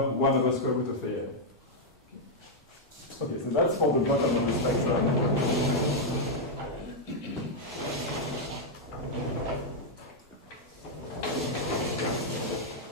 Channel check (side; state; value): both; normal; correlation -0.02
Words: 1 over square root of AL. Okay, so that's for the bottom of the spectrum.